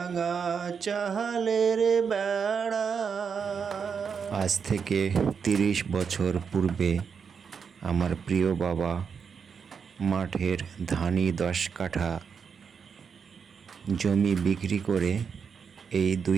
চালের বেড়া। আজ থেকে ৩০ বছর পূর্বে আমার প্রিয় বাবা মাঠের ধানি ১০ কাঠা জমি বিক্রি করে এই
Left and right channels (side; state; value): left; quieter; 6.4 dB